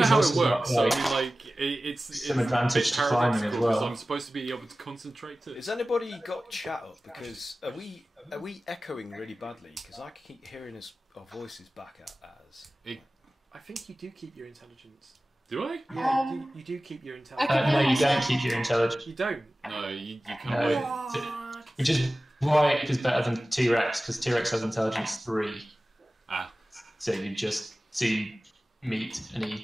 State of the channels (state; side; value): normal; both; correlation 0.96